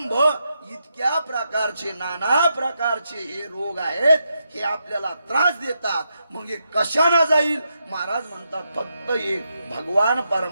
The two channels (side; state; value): both; inverted; correlation -0.83